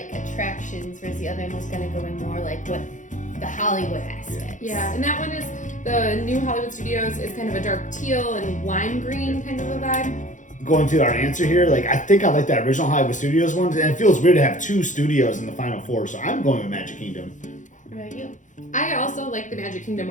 attractions, whereas the other one was going to go in more like what the Hollywood aspect. Yeah, and that one is the new Hollywood Studios is kind of a dark teal and lime green kind of a vibe. Going to our answer here, like I think I like that original Hollywood Studios one, and it feels weird to have two studios in the final four. So I'm going with Magic Kingdom. What about you? I also like the Magic Kingdom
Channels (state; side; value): late; right; 0.36 ms